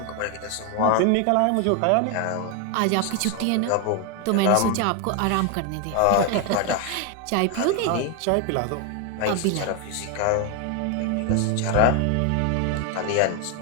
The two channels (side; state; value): both; different; correlation 0.01